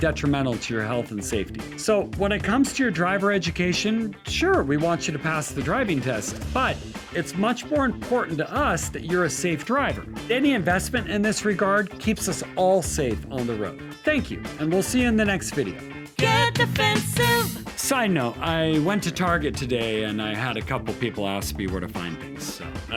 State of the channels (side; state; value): both; identical; correlation 1.00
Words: to your health and safety. So when it comes to your driver education, sure, we want you to pass the driving test, but it's much more important to us that you're a safe driver. Any investment in this regard keeps us all safe on the road. Thank you, and we'll see you in the next video. Get defensive. Side note, I went to Target today and I had a couple people ask me where to find things, so I